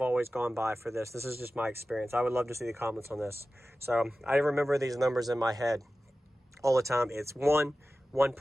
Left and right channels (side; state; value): both; normal; correlation 0.95